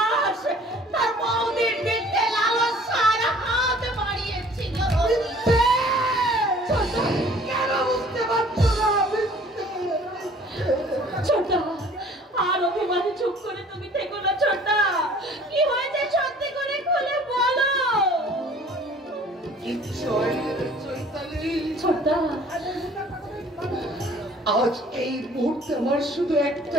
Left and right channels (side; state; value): both; normal; correlation 0.52